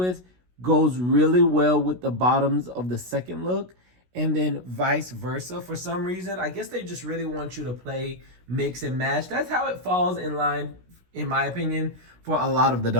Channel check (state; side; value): late; left; 16 ms